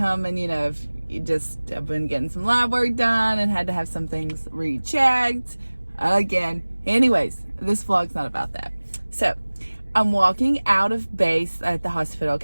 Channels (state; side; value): inverted; both; correlation -1.00